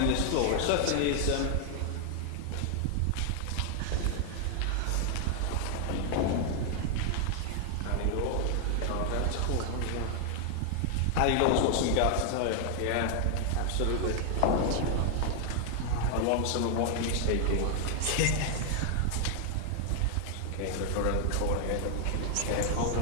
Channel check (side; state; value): both; different; correlation 0.00